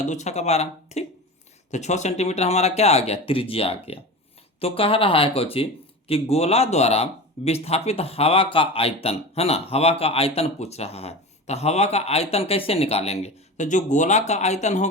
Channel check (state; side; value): normal; both; correlation 0.29